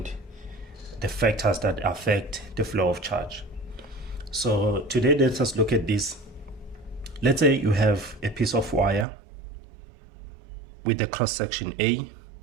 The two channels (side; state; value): left; drops out; at 9.1 s